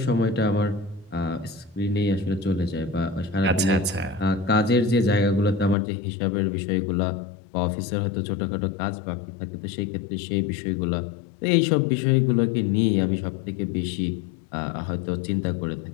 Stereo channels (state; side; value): drops out; right; at 5.8 s